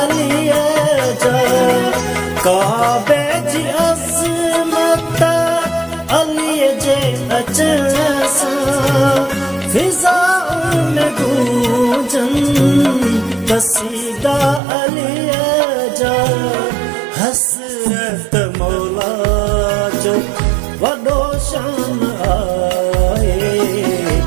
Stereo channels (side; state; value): left; drops out; at 14.6 s